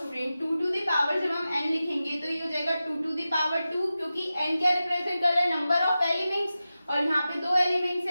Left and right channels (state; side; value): inverted; both; correlation -0.93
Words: 2 to the पावर जब हम n लिखेंगे तो ये हो जाएगा 2 to the पावर 2, क्योंकि n क्या रिप्रेजेंट कर रहा है, नंबर ऑफ एलिमेंट्स, और यहाँ पे 2 एलिमेंट्स